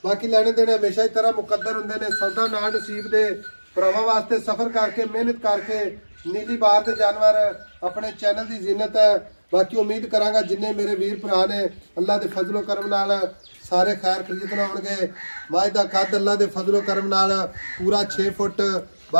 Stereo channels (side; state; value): both; inverted; correlation -1.00